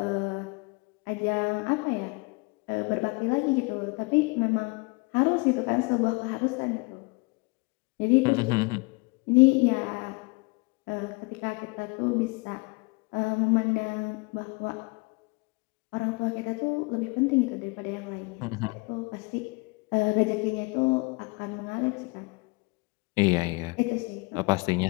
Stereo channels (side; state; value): right; quieter; 28.4 dB